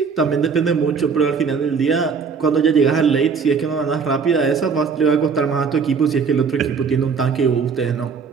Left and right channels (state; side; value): quieter; left; 5.6 dB